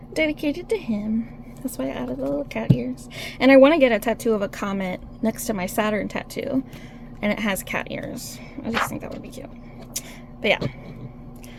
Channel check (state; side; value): identical; both; correlation 1.00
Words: dedicated to him. That's why I added the little cat ears. And I want to get a tattoo of a comet next to my Saturn tattoo. And it has cat ears. I just think that would be cute. But yeah.